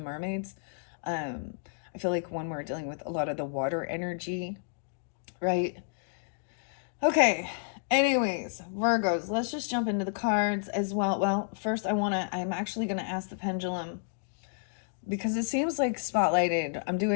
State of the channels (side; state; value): right; silent; digital silence